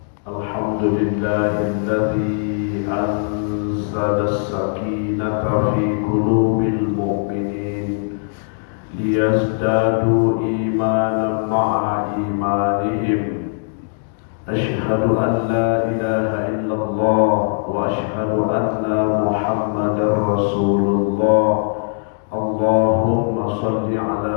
anzala as-sakinata fi qulubil mu'minin liyazdadu imanan ma'a imanihim. Asyhadu an la ilaha illallah wa asyhadu anna Muhammadar Rasulullah. Allahumma salli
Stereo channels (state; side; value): silent; right; digital silence